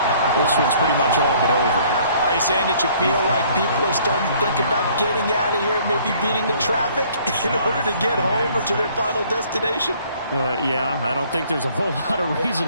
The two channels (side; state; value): both; inverted; correlation -0.58